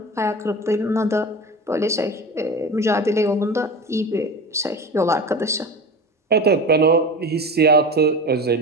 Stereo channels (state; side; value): normal; both; correlation 0.31